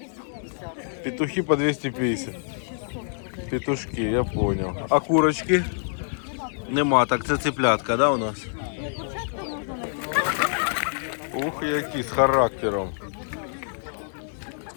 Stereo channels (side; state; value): right; silent; digital silence